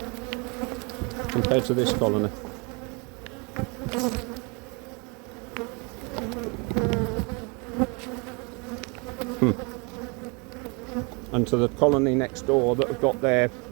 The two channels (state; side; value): quieter; left; 31.2 dB